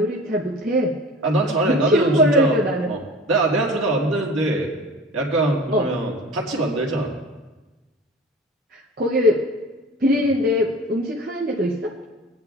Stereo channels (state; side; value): normal; both; correlation 0.40